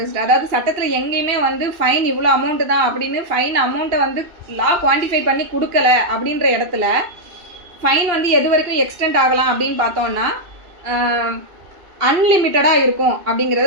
அதாவது சட்டத்தில் எங்கேயுமே வந்து fine இவ்வளோ amount தான் அப்படின்னு ஃபைன் அமௌண்ட்டை வந்து லா குவான்டிஃபை பண்ணி கொடுக்கல அப்படின்ற இடத்துல ஃபைன் வந்து எது வரைக்கும் எக்ஸ்டெண்ட் ஆகலாம் அப்படின்னு பார்த்தோம்னா அன்லிமிட்டடாக இருக்கும்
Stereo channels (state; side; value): late; left; 2.8 ms